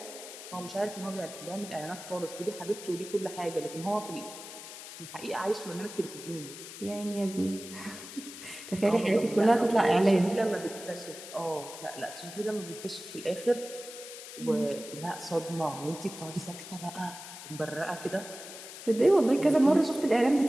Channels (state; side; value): noise; left; hiss, 13 dB below the sound